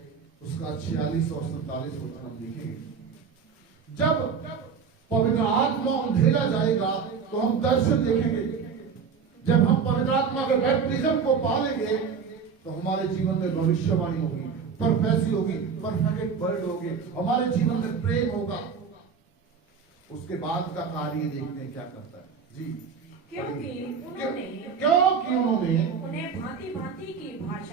उसका 46 और 47 वचन हम देखेंगे। जब पवित्र आत्मा अंधेरा जाएगा तो हम दर्शन देखेंगे। जब हम पवित्र आत्मा के बैप्टिज्म को पालेंगे तो हमारे जीवन में भविष्यवाणी होगी, प्रोफेसी होगी, परफेक्ट वर्ड होगी, हमारे जीवन में प्रेम होगा। उसके बाद का कार्य देखते हैं क्या करता है जी। क्योंकि उन्होंने उन्हें भांति भांति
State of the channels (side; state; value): left; quieter; 6.1 dB